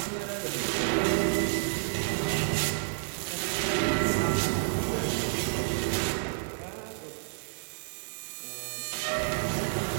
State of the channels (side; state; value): left; silent; digital silence